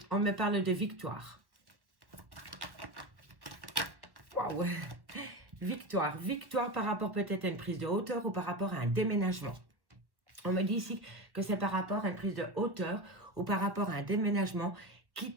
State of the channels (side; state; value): left; late; 1.0 ms